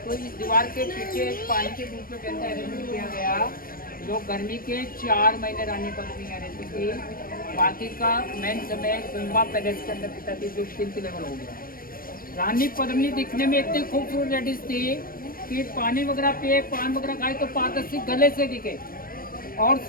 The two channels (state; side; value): late; right; 0.41 ms